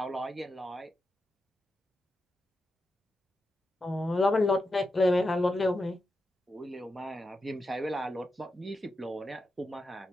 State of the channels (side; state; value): both; normal; correlation 0.88